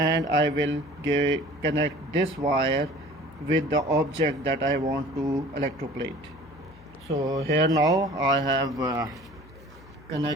I will connect this wire with the object that I want to electroplate. So here now I have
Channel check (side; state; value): left; noise; hum, 22 dB below the sound